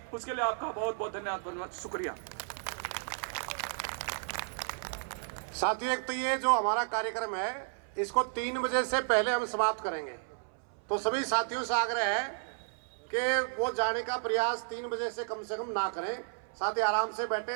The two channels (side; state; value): left; silent; 56 dB below the other